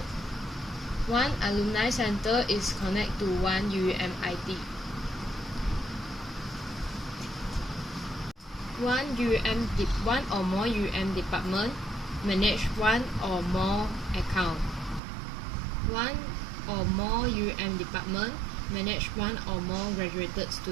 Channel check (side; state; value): left; drops out; at 15.0 s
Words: One alumni center is connect to one UUM ID. One or more UUM department manage one or more account. One or more UUM department manage one or more graduated